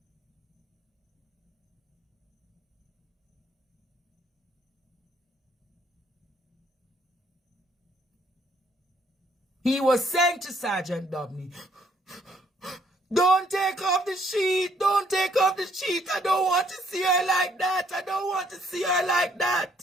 don't take off the sheet. Don't take off the sheet. I don't want to see her like that. I don't want to see her like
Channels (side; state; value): both; normal; correlation 0.66